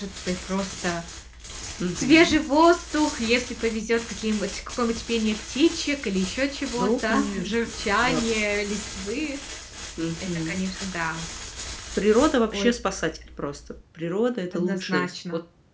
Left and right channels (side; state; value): both; identical; correlation 1.00